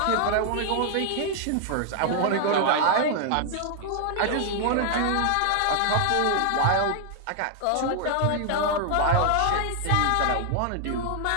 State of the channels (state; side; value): different; both; correlation 0.00